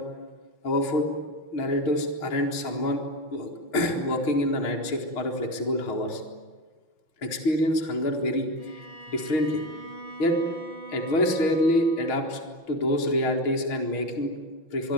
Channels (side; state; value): right; late; 6.0 ms